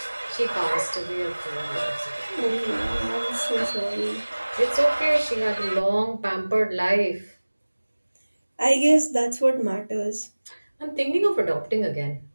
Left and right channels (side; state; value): both; inverted; correlation -1.00